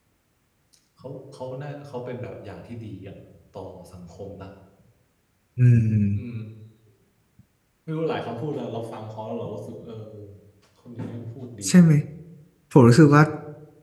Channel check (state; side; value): identical; both; correlation 1.00